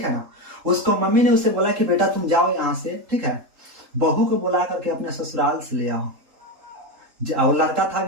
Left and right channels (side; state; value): left; late; 3.8 ms